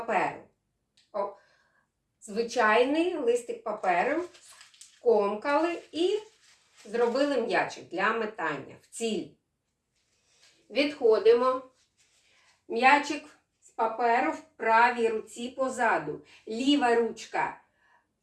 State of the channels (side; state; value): both; identical; correlation 1.00